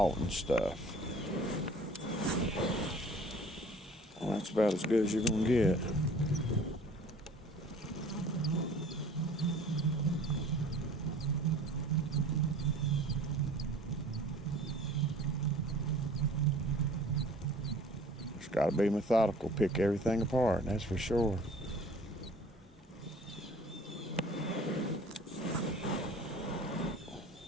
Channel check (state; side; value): normal; both; correlation 0.48